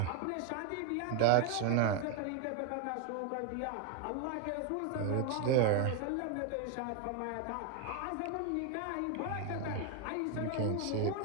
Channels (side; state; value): both; different; correlation 0.01